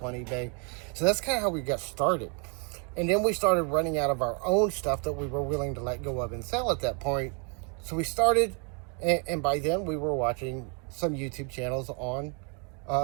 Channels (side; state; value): left; quieter; 36.1 dB